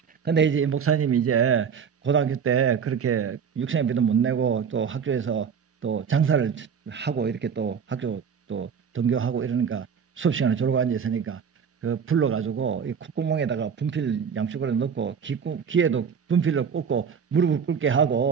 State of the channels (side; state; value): left; quieter; 7.0 dB